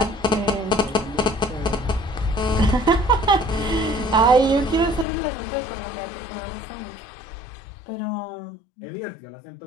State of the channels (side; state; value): right; drops out; at 5.1 s